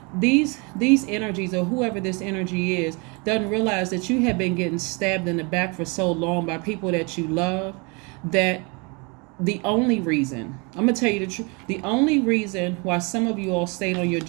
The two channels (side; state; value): left; quieter; 30.6 dB